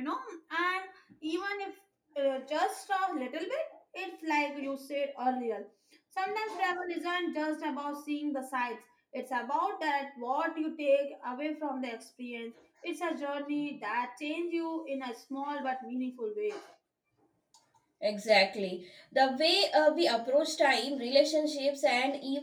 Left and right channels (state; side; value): identical; both; correlation 1.00